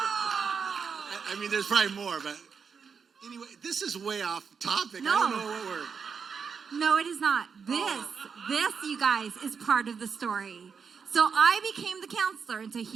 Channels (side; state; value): left; quieter; 6.1 dB